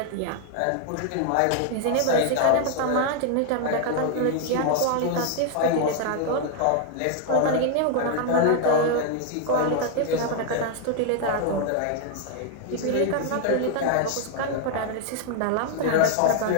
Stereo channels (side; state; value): both; different; correlation 0.00